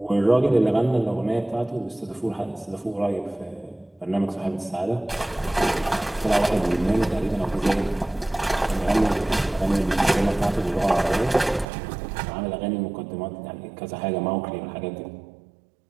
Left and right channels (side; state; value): left; drops out; at 11.7 s